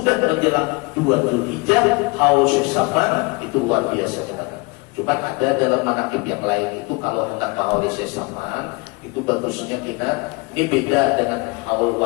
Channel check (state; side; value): quieter; right; 26.9 dB